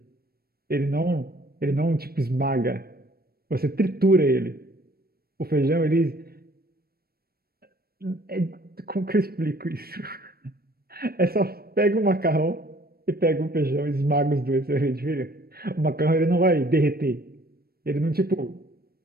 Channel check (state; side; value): late; left; 0.44 ms